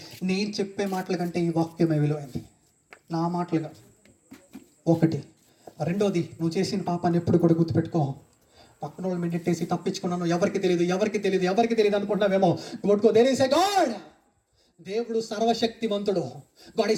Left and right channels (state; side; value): identical; both; correlation 1.00